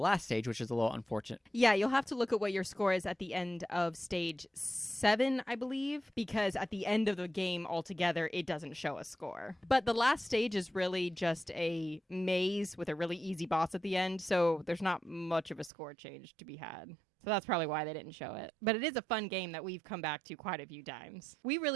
stage, which is a little unfortunate. Yeah, you'll have to look at what your score is at the end of stage 7, I believe, because at the end of the game altogether, it doesn't show a score. But the last stage is really just a maze with a really easy boss at the end, so there's not much of a score change to be had. So that's probably why they didn't show it. But it is a fun game that we've come back to quite a few times. We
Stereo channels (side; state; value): left; drops out; at 15.7 s